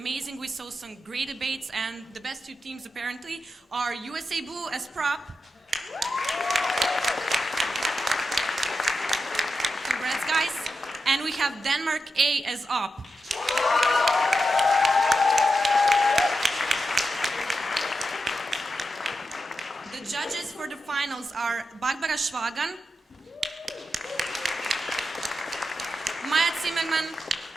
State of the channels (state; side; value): normal; both; correlation 0.88